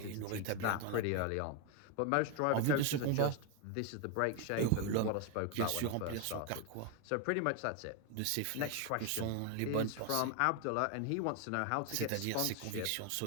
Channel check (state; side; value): different; both; correlation 0.01